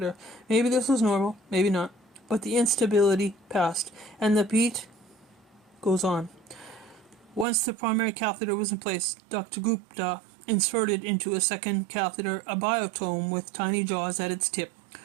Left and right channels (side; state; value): left; drops out; at 7.5 s